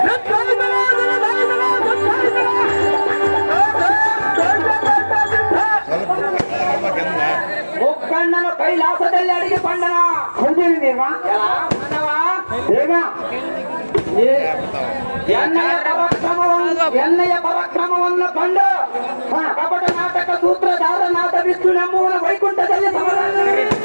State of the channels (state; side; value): inverted; both; correlation -1.00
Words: ಮುಕ್ಕಣ್ಣನ ಕೈಲಾಸದಲ್ಲಿ ಅಡಿಗೆ ಪಂಡನ ಎಣ್ಣೆಯ ಪರಾಕ್ರಮವನ್ನು ಕಂಡು ಕಪಟ ನಾಟಕ ಸೂತ್ರಧಾರನಾದ ವಿಷ್ಣು ಎಂಬುವನ ವೈಕುಂಠದಲ್ಲಿ